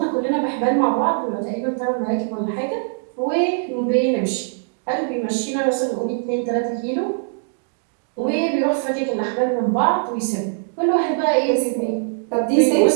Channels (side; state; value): left; silent; digital silence